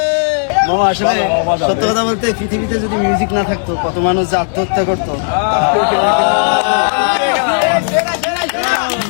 মামা, আসলে সত্য কথা বলতে পৃথিবীতে যদি মিউজিক না থাকতো কত মানুষ যে আত্মহত্যা করতো।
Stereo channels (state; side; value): silent; right; digital silence